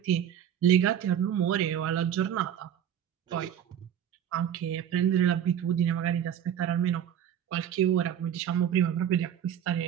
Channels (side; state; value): left; quieter; 9.5 dB